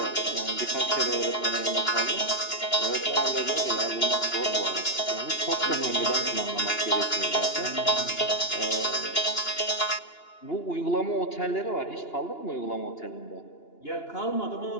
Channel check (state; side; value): late; right; 2.9 ms